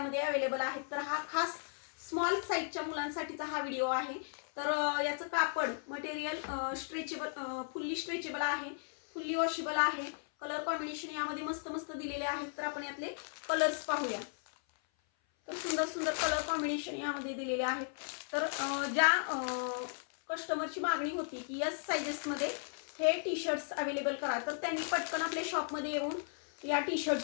अवेलेबल आहेत। तर हा खास स्मॉल साईजच्या मुलांसाठीचा हा व्हिडिओ आहे। तर याचं कापड मटेरियल स्ट्रेचेबल, फुल्ली स्ट्रेचेबल आहे, फुल्ली वॉशेबल आहे। कलर कॉम्बिनेशन यामध्ये मस्त मस्त दिलेले आहेत। तर आपण यातले कलर्स पाहूया। तर सुंदर सुंदर कलर कॉम्बिनेशन यामध्ये दिलेले आहेत। तर ज्या कस्टमरची मागणी होती की एस साइजेसमध्ये हे टी शर्ट्स अवेलेबल करा, तर त्यांनी पटकन आपल्या शॉपमध्ये येऊन या टी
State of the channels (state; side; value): silent; right; 54 dB below the other